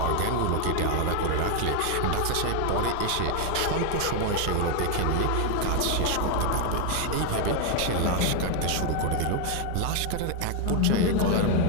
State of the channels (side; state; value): both; different; correlation 0.01